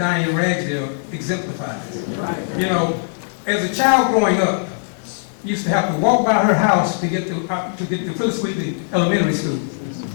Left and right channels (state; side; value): silent; right; digital silence